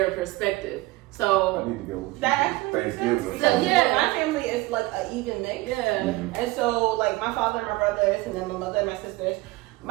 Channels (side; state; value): left; quieter; 20.5 dB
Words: perspective. So I need to go with you. That actually makes sense. Thanksgiving. Because Yeah. my family is like an even mix. yeah, And so like my father and my brothers and then my mother and my sisters.